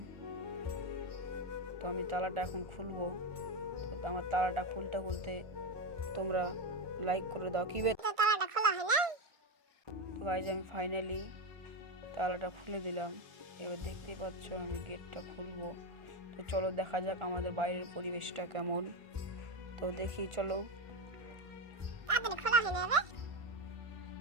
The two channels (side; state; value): left; late; 1.5 ms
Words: তো আমি তালাটা এখন খুলবো। তো আমার তালাটা খুলতে তোমরা লাইক করে দাও। কি তো তালাটা খোলা হয় না? তো গাইস আমি ফাইনালি তালাটা খুলে দিলাম। এবার দেখতে পাচ্ছ আমি গেটটা খুলবো। তো চলো দেখা যাক আমাদের বাইরের পরিবেশটা কেমন। তো দেখি চলো তাড়াতাড়ি খোলা হয় না বে?